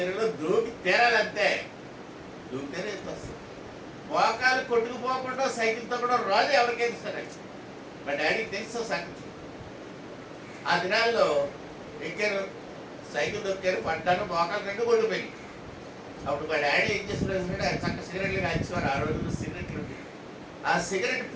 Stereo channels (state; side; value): identical; both; correlation 1.00